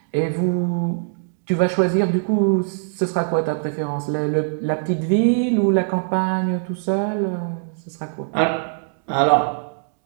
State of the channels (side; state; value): left; silent; digital silence